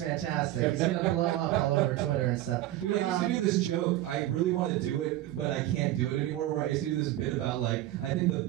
He's gonna blow up all over Twitter and stuff. Dude, I used to do this joke. I really want to do it, but I can't do it anymore. Where I used to do this bit about like, I think the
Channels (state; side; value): quieter; left; 14.9 dB